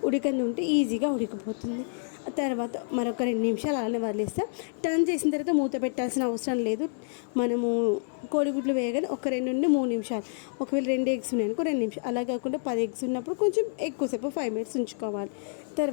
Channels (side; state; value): right; silent; digital silence